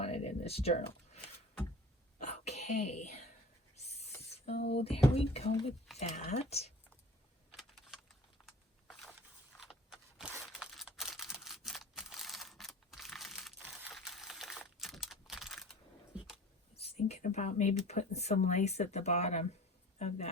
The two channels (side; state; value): both; normal; correlation 0.43